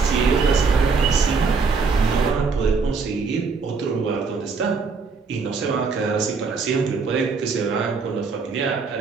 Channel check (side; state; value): left; quieter; 4.8 dB